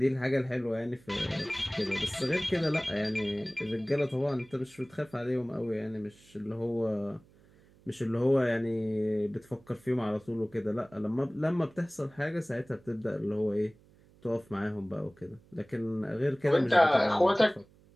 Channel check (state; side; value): noise; right; hum, 28 dB below the sound